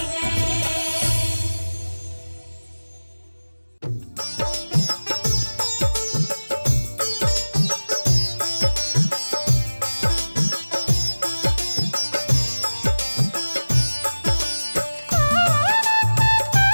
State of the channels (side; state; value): both; inverted; correlation -1.00